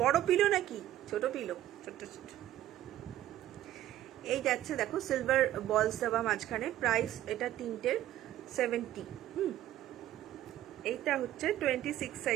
বড় পিলো নাকি ছোট পিলো? ছোট ছোট। এই যাচ্ছে দেখো সিলভার বলস দেওয়া মাঝখানে, প্রাইস এটা তিনটের 70। এইটা হচ্ছে 26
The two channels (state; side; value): quieter; left; 13.2 dB